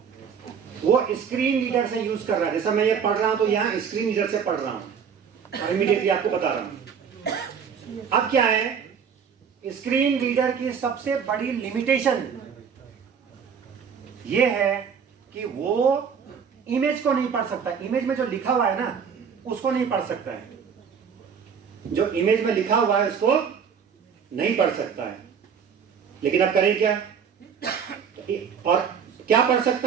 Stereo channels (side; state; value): left; quieter; 7.0 dB